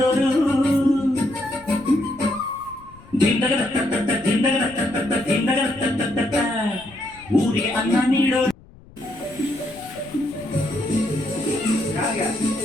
ಊರಿಗೆ ಅನ್ನ ನೀಡೋ.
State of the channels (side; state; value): left; noise; rumble, 23 dB below the sound